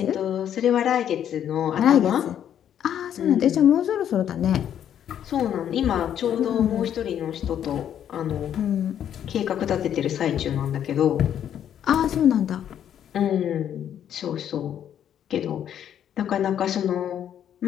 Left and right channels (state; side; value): quieter; right; 9.8 dB